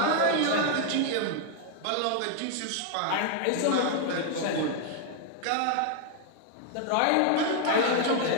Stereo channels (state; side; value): different; both; correlation 0.00